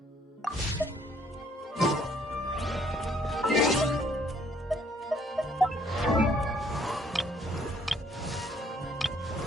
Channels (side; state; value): both; normal; correlation 0.64